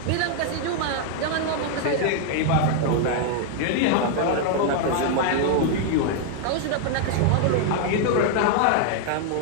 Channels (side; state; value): both; different; correlation 0.00